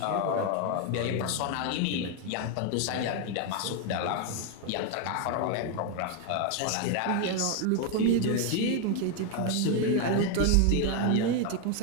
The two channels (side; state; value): both; different; correlation 0.01